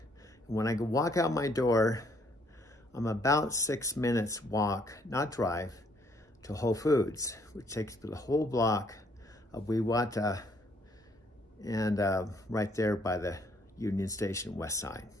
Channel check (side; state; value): both; normal; correlation 0.67